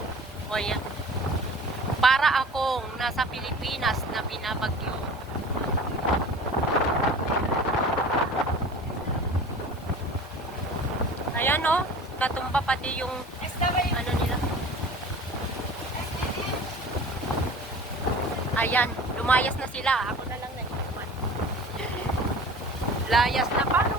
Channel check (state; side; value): normal; both; correlation 0.41